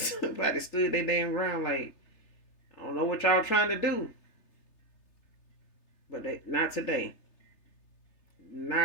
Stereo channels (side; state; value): right; late; 3.3 ms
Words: stood their damn ground. Like, I don't know what y'all trying to do, but not today.